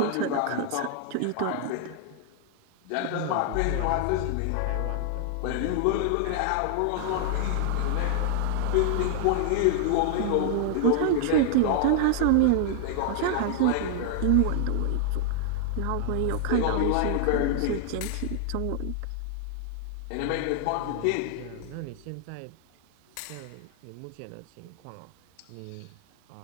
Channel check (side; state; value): both; different; correlation 0.00